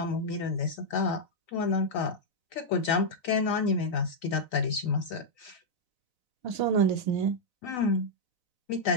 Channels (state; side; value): late; right; 4.0 ms